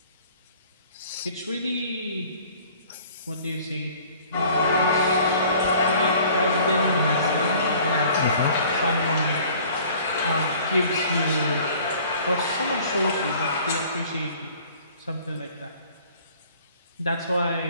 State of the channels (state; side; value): inverted; both; correlation -0.52